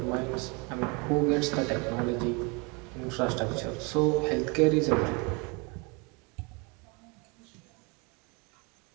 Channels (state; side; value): quieter; left; 30.3 dB